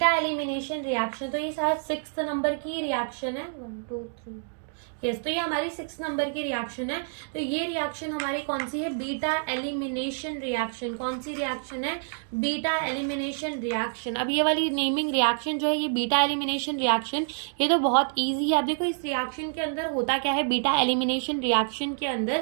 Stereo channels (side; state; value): left; silent; digital silence